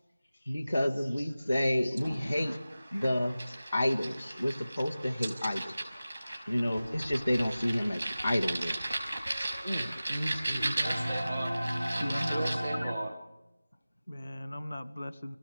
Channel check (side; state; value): both; inverted; correlation -0.96